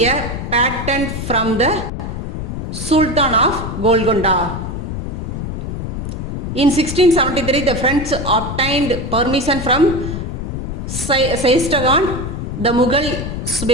a patent from the Sultan of Golconda. In 1673, the French obtained permission from Saistagan, the Mughal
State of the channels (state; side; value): noise; left; rumble, 5 dB below the sound